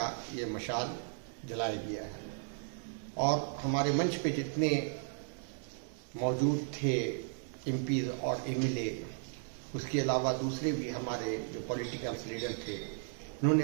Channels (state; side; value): silent; left; digital silence